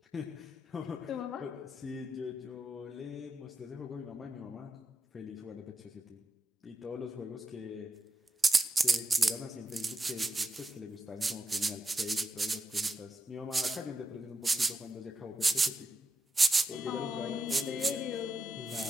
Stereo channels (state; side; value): normal; both; correlation 0.87